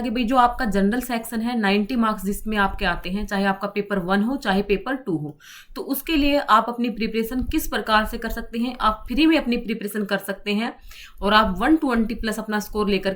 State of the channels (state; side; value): identical; both; correlation 1.00